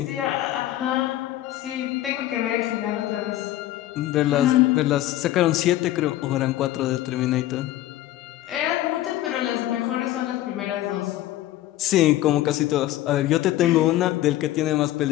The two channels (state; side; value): quieter; right; 14.5 dB